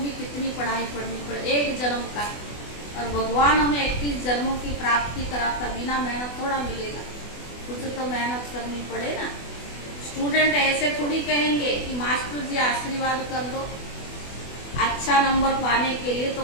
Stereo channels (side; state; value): right; late; 24 ms